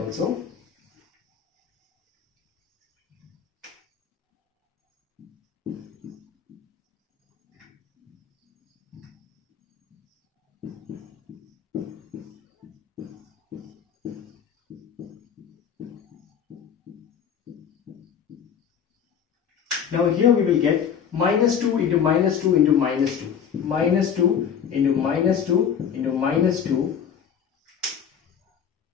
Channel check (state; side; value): quieter; right; 7.9 dB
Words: also. Now here we will get minus 2 into minus 2 into minus 2. Minus 2 into minus 2 into minus 2.